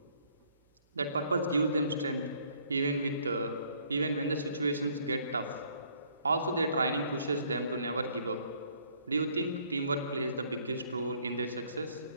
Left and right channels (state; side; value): inverted; both; correlation -0.63